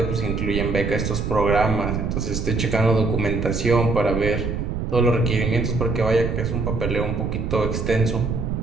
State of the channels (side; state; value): right; noise; rumble, 2 dB below the sound